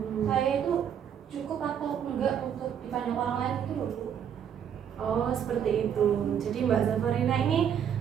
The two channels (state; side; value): quieter; left; 8.6 dB